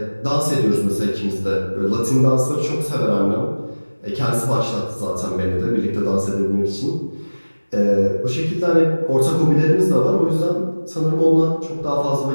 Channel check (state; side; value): inverted; both; correlation -1.00